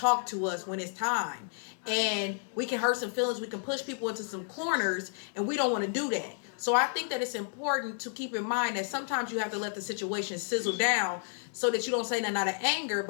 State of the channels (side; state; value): right; silent; 57 dB below the other